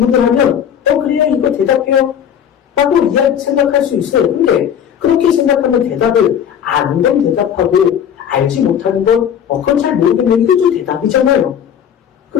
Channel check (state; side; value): quieter; right; 8.8 dB